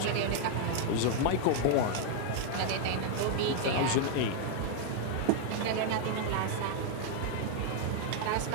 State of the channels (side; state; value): both; different; correlation 0.00